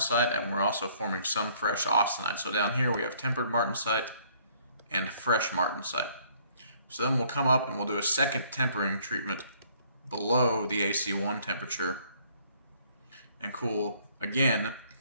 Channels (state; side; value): inverted; both; correlation -0.62